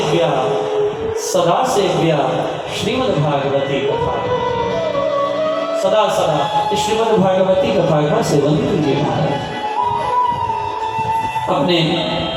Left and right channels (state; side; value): identical; both; correlation 1.00